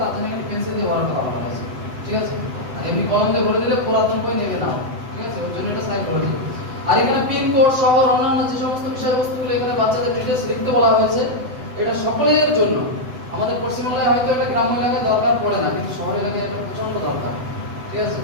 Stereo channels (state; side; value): late; left; 7.9 ms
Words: তার জন্য একটা পেন্সিল দিয়ে বড়টা করা হয়েছে, ঠিক আছে? আর এমনি কলম দিয়ে ভরে দিলে পুরাতন বই নেবে না। ঠিক আছে, ওর জন্য এটা সাইকোলজি। আর এখানে পিন কোড সহ অন্যান্য যে সমস্ত বিষয়বস্তুগুলো এখানে বাচ্চাদের ডিটেইলস লিখতে বলা হয়েছে, এটা সকলের জন্য। আমাদের পশ্চিমবাংলায় হয়তো এটা গ্রাম্য এলাকায় দরকার পড়ে না, কিন্তু শহর এলাকায় এটা প্রচন্ড দরকার। ঠিক আছে,